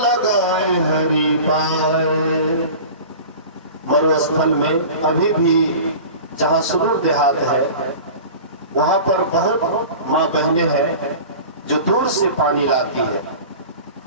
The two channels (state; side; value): inverted; both; correlation -0.37